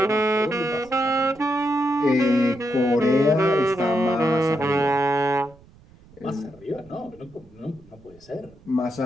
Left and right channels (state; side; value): noise; right; rumble, 26 dB below the sound